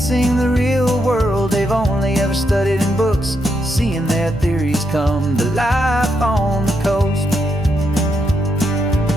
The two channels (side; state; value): both; normal; correlation 0.80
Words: the real world they've only ever studied in books, seeing their theories come to life on the coast.